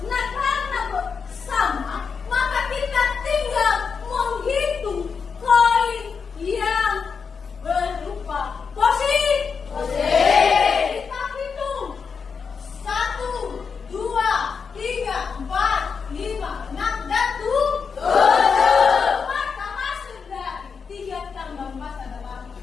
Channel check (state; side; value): quieter; right; 5.8 dB